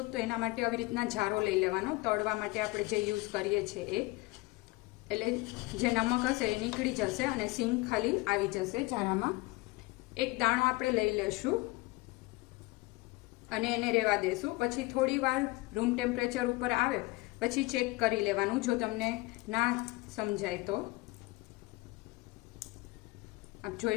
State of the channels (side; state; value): right; quieter; 22.3 dB